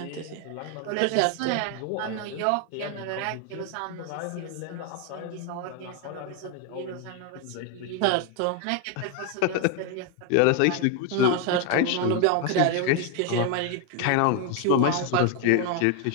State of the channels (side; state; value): both; different; correlation 0.01